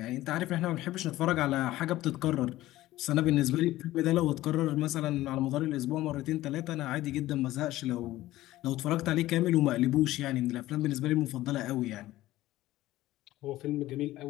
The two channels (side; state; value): right; quieter; 16.0 dB